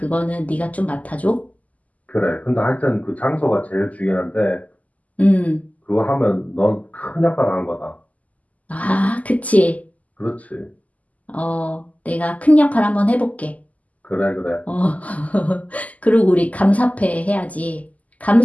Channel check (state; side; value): late; right; 0.075 ms